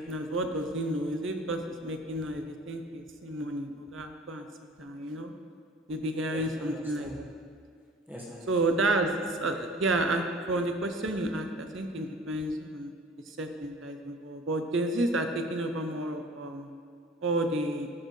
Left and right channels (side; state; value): both; normal; correlation 0.46